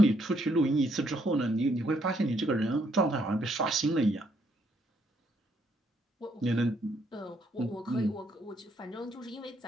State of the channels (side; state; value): both; normal; correlation 0.72